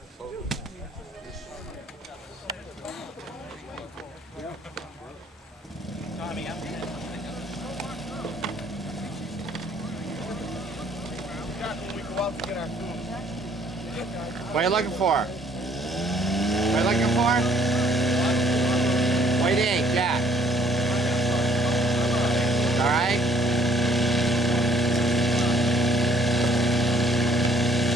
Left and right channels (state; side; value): normal; both; correlation 0.62